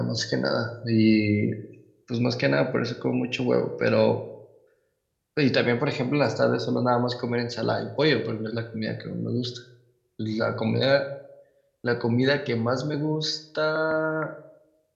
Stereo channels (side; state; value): both; identical; correlation 1.00